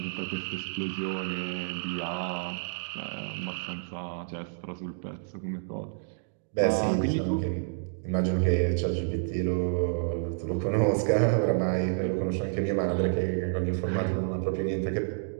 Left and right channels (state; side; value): silent; left; digital silence